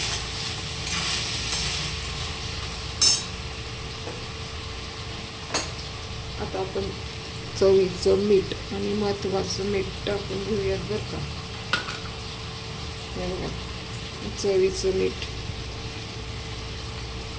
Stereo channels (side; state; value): both; identical; correlation 1.00